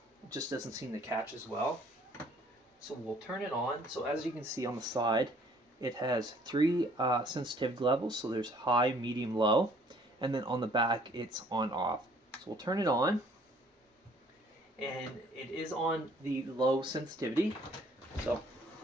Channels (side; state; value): both; normal; correlation 0.59